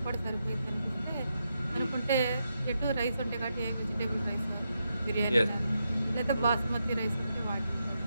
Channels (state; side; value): inverted; both; correlation -0.84